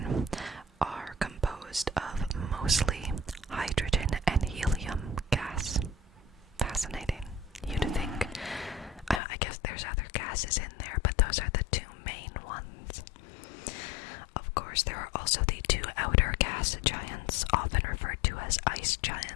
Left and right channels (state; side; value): drops out; right; at 9.2 s